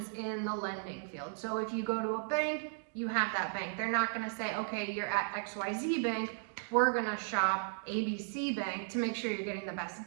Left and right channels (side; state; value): left; silent; digital silence